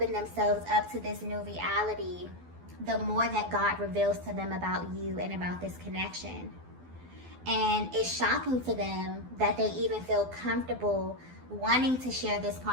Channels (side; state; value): left; late; 12 ms